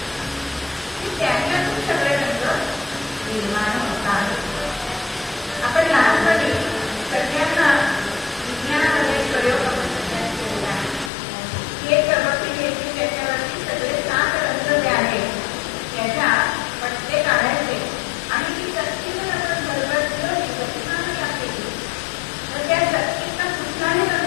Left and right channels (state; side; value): drops out; right; at 11.1 s